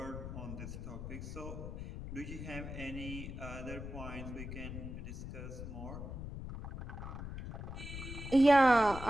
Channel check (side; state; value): left; noise; rumble, 8 dB below the sound